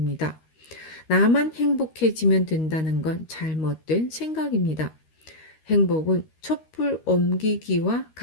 나만 행복해지면 된다는 건 잘못된 생각입니다. 행복은 촛불 옮기기와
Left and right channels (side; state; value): right; late; 13 ms